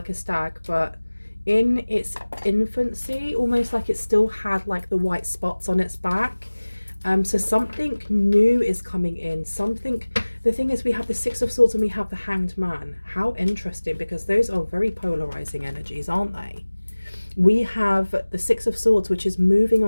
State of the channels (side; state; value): both; inverted; correlation -1.00